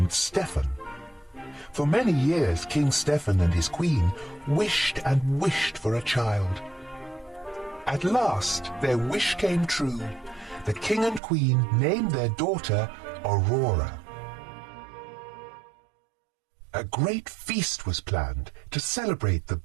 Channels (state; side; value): drops out; left; at 11.2 s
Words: Stephen. For many years King Stephen and his queen wished and wished for a child. At last their wish came true. The king and queen named their daughter Aurora. A great feast was planned to celebrate the